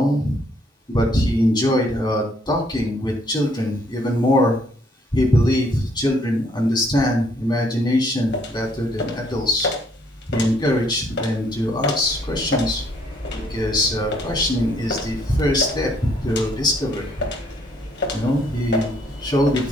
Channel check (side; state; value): both; normal; correlation 0.66